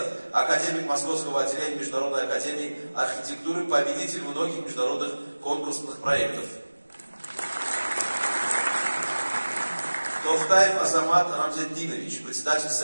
академик Московского отделения Международной академии архитектуры, победитель многих международных конкурсных проектов. Тохтаев Азамат Рамзетдинович, председатель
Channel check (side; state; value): both; inverted; correlation -1.00